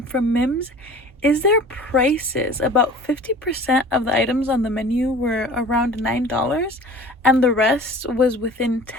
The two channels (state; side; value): normal; both; correlation 0.43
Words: Mims is their prices. About 50% of the items on the menu were around $9, and the rest was within